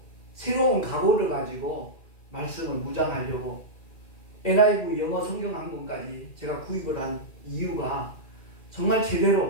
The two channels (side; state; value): right; late; 2.4 ms